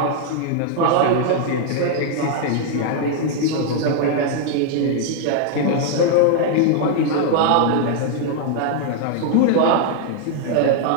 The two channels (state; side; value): different; both; correlation 0.00